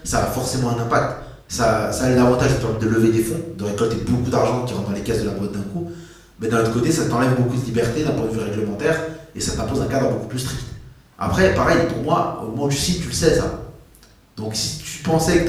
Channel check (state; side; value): identical; both; correlation 1.00